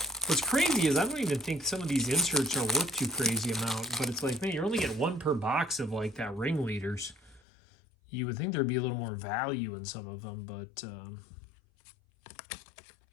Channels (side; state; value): right; drops out; at 7.4 s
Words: What's crazy is I don't even think some of these inserts are worth too crazy amount, but it's like, man, you're only getting 1 per box of like that ringleaders. You would think there'd be a little more value in some of them, but